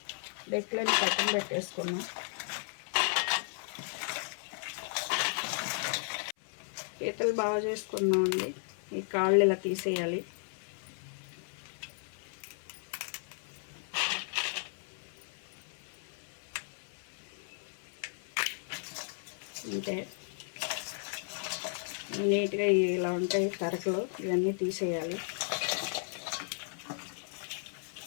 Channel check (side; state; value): right; silent; 55 dB below the other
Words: డెక్కులని పక్కన పెట్టేసుకున్నాం. పీతలు బాగా చేసుకున్నాం అండి. ఈ కాళ్ళు ఇలా తీసేయాలి. అంటే నీట్గా ఇలా ఉంటాయి తరకలు, ఇవన్నీ తీసేయాలి.